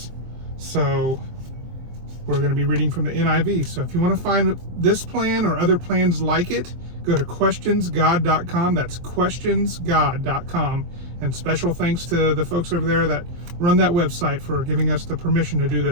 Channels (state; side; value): late; left; 23 ms